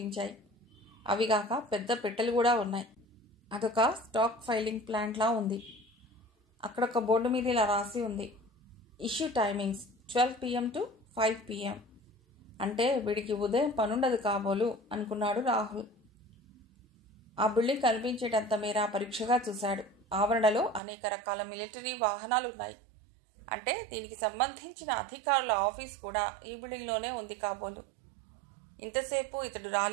అవిగాక పెద్ద పెట్టెలు కూడా ఉన్నాయి. అదొక స్టాక్ ఫైలింగ్ ప్లాంట్లా ఉంది. అక్కడొక బోర్డు మీద ఇలా రాసి ఉంది, issue timings 12 PM to 5 PM. అంటే వీడికి ఉదయం పనుండదు కాబోలు అనుకున్నాడు రాహుల్. ఆ బిల్డింగ్ కనిపించేటంత మేర పరీక్షగా చూశాడు. ఆవరణలో అనేక రకాల మిలిటరీ వాహనాలు ఉన్నాయి. అంటే దీనికి సంబంధించిన అధికారుల ఆఫీస్ కూడా ఈ బిల్డింగ్లోనే ఉంది కాబోలు. ఇంతసేపు ఇతడు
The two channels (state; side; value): drops out; left; at 20.8 s